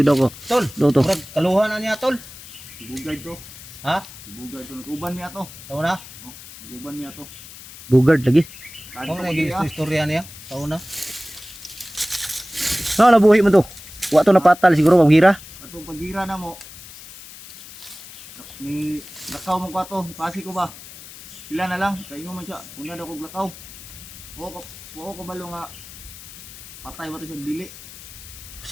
ako. Tol. Do to. Murag kaluha na niya tol. Bugard to. Ha? Bugard to. Nag-uban mi ato. Tao na? Nag-uban mi ato. Bugard lagi. Kung naging istorya niya. Tao na. No, nabuhi mo to. Wato na patal siguro maghira. Atong pagira na mo. Ni lakaw mo ko ato. Pasi ko ba? Sila na lang. Kaingo man siya. Una daw kog lakaw. Buo ko balo nga patay ba ito siya dili.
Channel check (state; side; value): noise; left; hiss, 16 dB below the sound